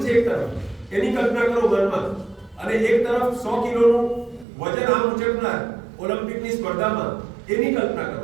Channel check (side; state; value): left; drops out; at 4.5 s